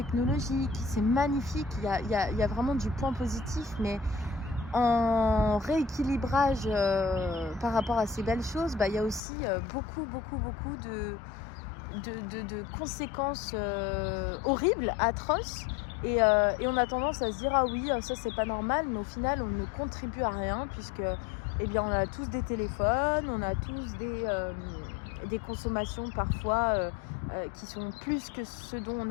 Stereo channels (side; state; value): right; drops out; at 9.2 s